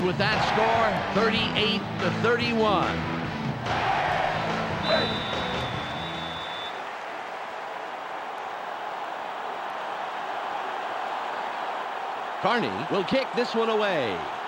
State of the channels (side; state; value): both; identical; correlation 1.00